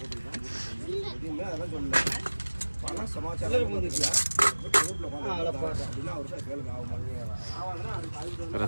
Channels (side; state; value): both; inverted; correlation -1.00